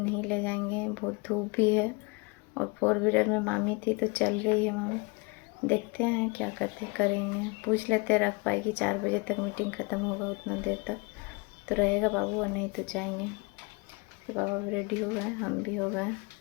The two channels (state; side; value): quieter; right; 28.9 dB